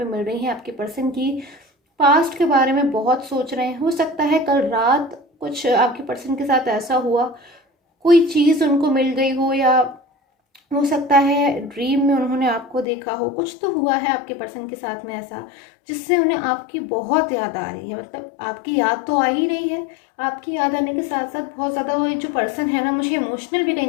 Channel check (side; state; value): right; drops out; at 12.9 s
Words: मिल रही है आपके पर्सन की, पास्ट के बारे में बहुत सोच रहे हैं। हो सकता है कल रात कुछ आपके पर्सन के साथ ऐसा हुआ, कोई चीज़ उनको मिल गई हो, या हो सकता है ड्रीम में उन्होंने आपको देखा हो। कुछ तो हुआ है आपके पर्सन के साथ में ऐसा, जिससे उन्हें आपकी बहुत याद आ रही है। मतलब आपकी याद तो आ ही रही है, आपकी याद आने के साथ साथ बहुत ज़्यादा वो जो पर्सन है ना, मुझे इमोशनल भी कहीं